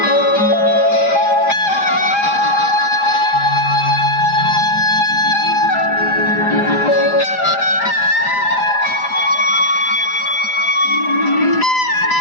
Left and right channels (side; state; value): right; late; 4.9 ms